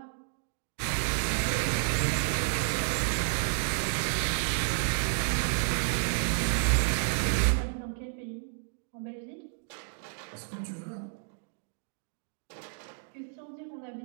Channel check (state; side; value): silent; left; digital silence